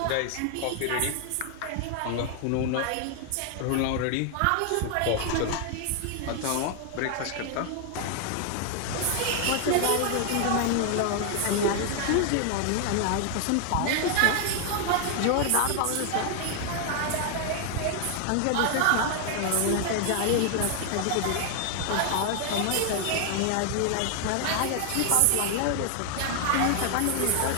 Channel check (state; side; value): different; both; correlation 0.00